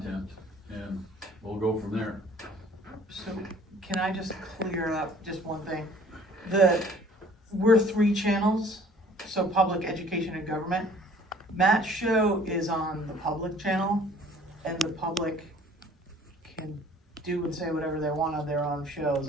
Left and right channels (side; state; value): both; normal; correlation 0.53